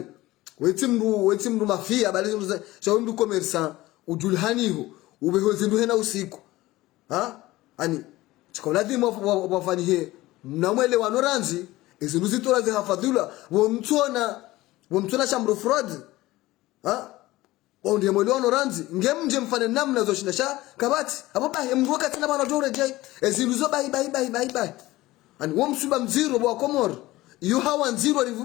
wetimru mafia bali zindu za shawimdu commerçant ujulhaniho ubeho zindu hena usiku ani chikoladhi wafanyie mnamwelewano ranzi izindu zitora zihafadhula womtona shamro fraud ndiye mwelewano ranzi ngemje mfane namna zoshinda sha kabati hapo bahi mruka tena bana dore jai ezindu zo bahi ani womsuba mziro bwa komor yu hawa nziro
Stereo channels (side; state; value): right; quieter; 18.1 dB